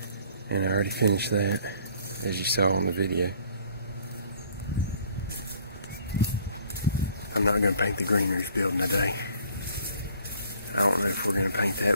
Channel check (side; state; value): both; inverted; correlation -0.57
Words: And I already finished that, as you saw on the video. I'm not going to paint the green roof building today. I don't know if we're going to paint